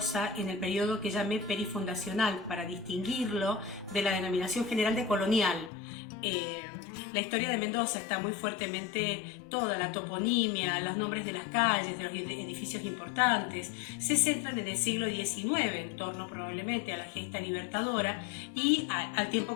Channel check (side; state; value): right; drops out; at 5.7 s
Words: en el periodo que llamé perifundacional, para distinguirlo de la denominación general de colonial. La historia de Mendoza está muy fuertemente, toda la toponimia, los nombres de las calles, de los edificios importantes, se centran en el siglo XIX, en torno probablemente a la gesta libertadora y al tiempo